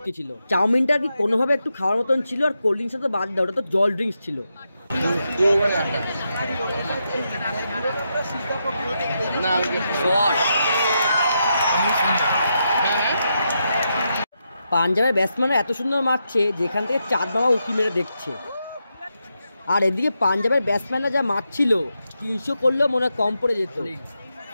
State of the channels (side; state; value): both; inverted; correlation -0.84